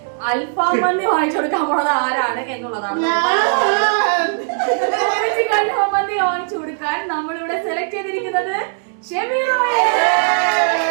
അൽഫാം മന്തി വാങ്ങിച്ചു കൊടുക്കാൻ പോണത് ആരാണ് എന്നുള്ളതാണ്. ഉമ്മച്ചിക്ക് അൽഫാം മന്തി വാങ്ങിച്ചു കൊടുക്കാൻ നമ്മളിവിടെ സെലക്ട് ചെയ്തിരിക്കുന്നത് ഷെമീർ റോയ്.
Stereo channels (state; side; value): silent; left; digital silence